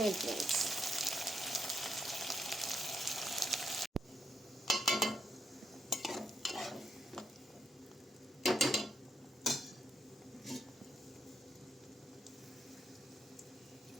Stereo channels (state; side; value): normal; both; correlation 0.79